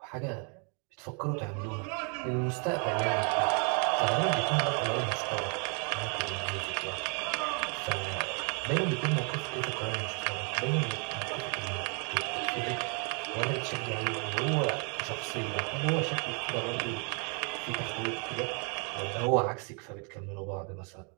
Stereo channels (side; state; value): left; quieter; 37.9 dB